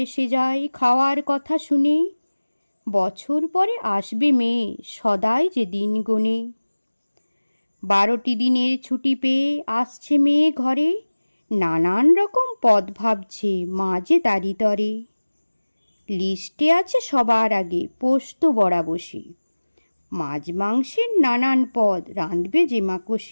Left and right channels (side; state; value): both; inverted; correlation -1.00